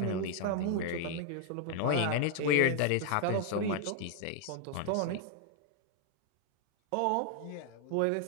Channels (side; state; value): both; different; correlation 0.00